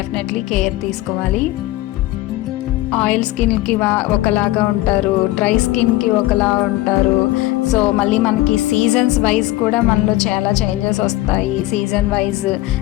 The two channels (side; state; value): right; quieter; 16.9 dB